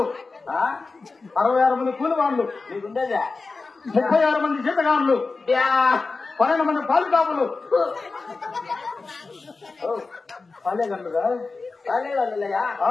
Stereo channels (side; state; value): right; quieter; 4.0 dB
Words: 66 మంది కూలి వాళ్ళు నీకుండేదా 36 మంది జీతగాళ్ళు 12 మంది పాలు కాపులు పాలేగండుగా పాలేగండులయ్యా